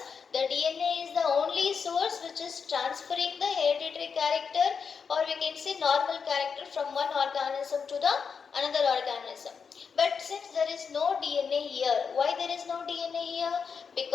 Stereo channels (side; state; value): right; quieter; 6.0 dB